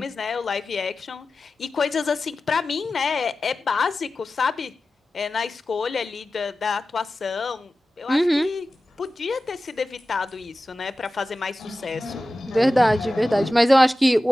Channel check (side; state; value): both; normal; correlation 0.95